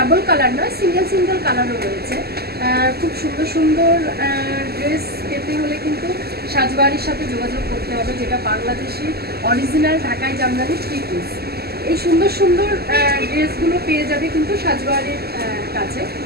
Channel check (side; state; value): left; late; 0.46 ms